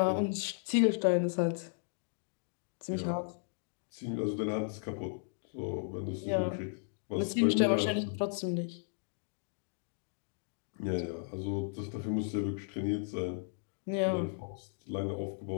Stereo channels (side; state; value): right; silent; digital silence